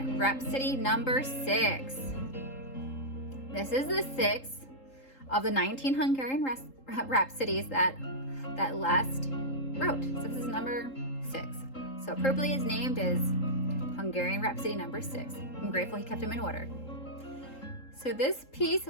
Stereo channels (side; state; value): right; late; 3.8 ms